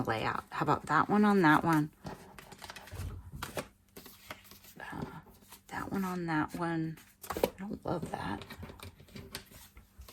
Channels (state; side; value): identical; both; correlation 1.00